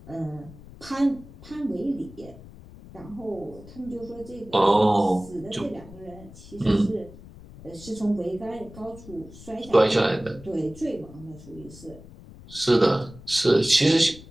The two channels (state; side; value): noise; left; rumble, 18 dB below the sound